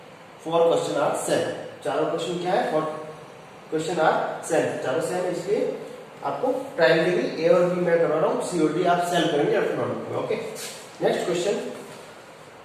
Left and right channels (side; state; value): both; identical; correlation 1.00